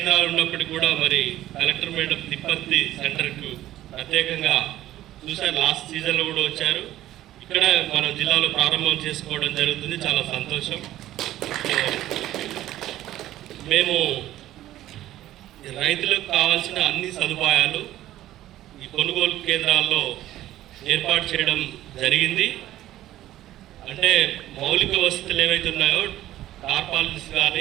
ఉన్నప్పటికీ కూడా మరి కలెక్టర్ మేడం తిప్పర్తి సెంటర్కు ప్రత్యేకంగా చూసారు, లాస్ట్ సీజన్లో కూడా వచ్చారు. ఇక్కడ మన జిల్లాలో ప్రారంభం చేసుకోవడం జరుగుతుంది, చాలా సంతోషం. మేము రైతులకు కావాల్సిన అన్ని సదుపాయాలు ఈ కొనుగోలు కేంద్రాల్లో ఏర్పాటు చేయడం జరిగింది. అంటే మౌలిక వసతులు ఏవైతే ఉన్నాయో, టార్పాలిన్స్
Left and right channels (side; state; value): left; quieter; 14.0 dB